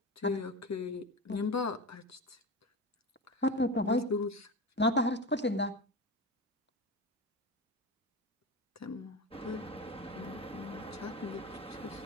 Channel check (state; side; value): normal; both; correlation 0.26